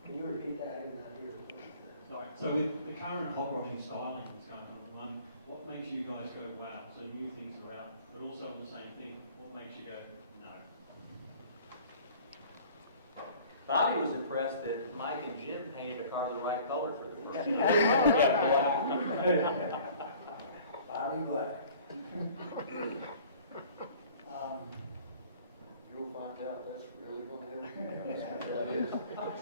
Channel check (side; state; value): both; inverted; correlation -0.49